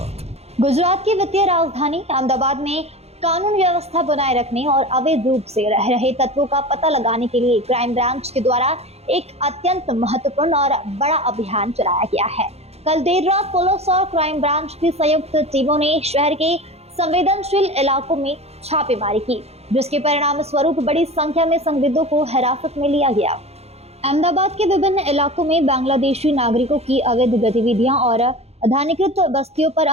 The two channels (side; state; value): left; late; 0.30 ms